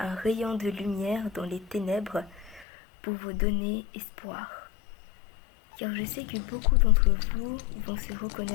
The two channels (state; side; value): drops out; right; at 2.7 s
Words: rayon de lumière dans les ténèbres pour vous donner espoir. Car je sais que beaucoup d'entre vous vont se